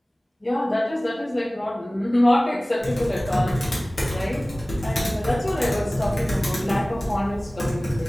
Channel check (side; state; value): both; normal; correlation 0.98